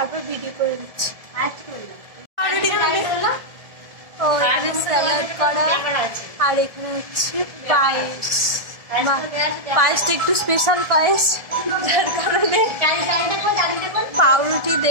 ভিডিও করে দিচ্ছি। ও এখানে স্যালাড করা, আর এখানে হচ্ছে পায়েস। পায়েসটা একটু স্পেশাল পায়েস, যার কারণে পাউরুটি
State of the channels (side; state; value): left; late; 1.5 ms